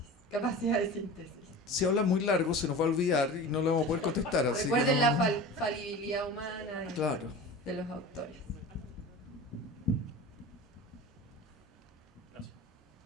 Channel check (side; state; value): both; normal; correlation 0.34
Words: capacidad de síntesis. Si habla muy largo se nos va a olvidar y no lo vamos a poder contestar. Así Recuerden que la falibilidad humana claro. de los autores. Gracias.